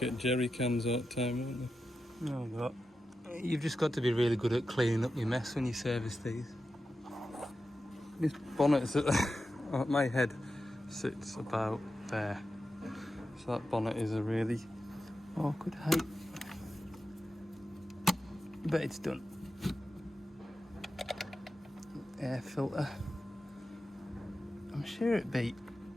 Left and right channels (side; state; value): both; normal; correlation 0.90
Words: jerry cans all the time, won't they? Oh, God. You've just got to be really good at cleaning up your mess when you service these. This bonnet is at my head sits about there, so that bonnet is a really awkward height, but it's done. Air filter, I'm sure it beat